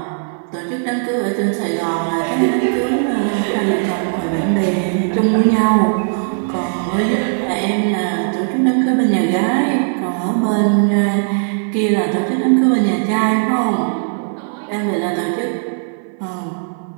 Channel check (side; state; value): left; silent; 56 dB below the other